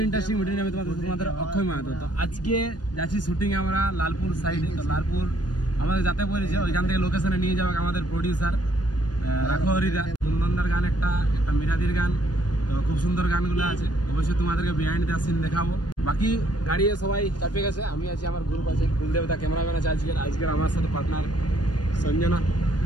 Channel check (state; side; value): late; right; 0.69 ms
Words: ইন্টারেস্টিং ভিডিও নিয়ে আমি তোমাদের অক্ষয় মাহাতো। তো আজকে যাচ্ছি শুটিং আমরা লালপুর সাইডে। তো লালপুর আমাদের যাতে বলেছে, ওইখান থেকে লোকেশনে নিয়ে যাবে আমাদের প্রডিউসার রাখো হরিদা। কুন্দনদার গান একটা মিরাদির গান, তো খুব সুন্দর গানগুলো আছে। অবশ্যই তোমাদেরকে বিহাইন্ড দ্য সিন দেখাবো। বাকি গাড়িয়ে সবাই চাপে গেছে, আমি আছি, আমার গ্রুপ আছে, কুলদেবতা ক্যামেরাম্যান আছে আজকের আমার সাথে পার্টনার সঞ্জনা।